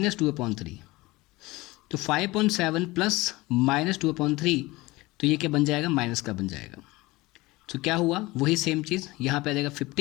तो 5/7 प्लस -2/3 तो ये क्या बन जाएगा? माइनस का बन जाएगा. तो क्या हुआ? वही सेम चीज़ यहाँ पे आ जाएगा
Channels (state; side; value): quieter; right; 21.0 dB